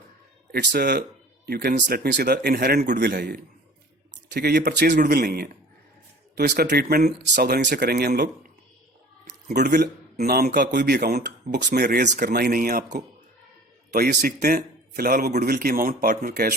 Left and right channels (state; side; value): normal; both; correlation 0.45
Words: It's you can let me से द इनहेरेंट गुडविल है ये, ठीक है, ये परचेज गुडविल नहीं है। तो इसका ट्रीटमेंट सावधानी से करेंगे हम लोग। गुडविल नाम का कोई भी अकाउंट बुक्स में रेज करना ही नहीं है आपको। तो आइए सीखते हैं। फिलहाल वो गुडविल की अमाउंट पार्टनर कैश